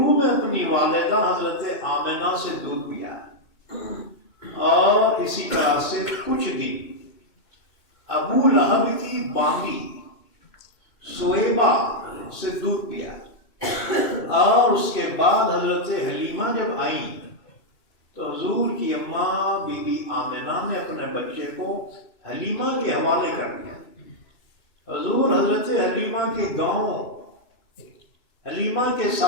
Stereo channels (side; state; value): right; late; 2.6 ms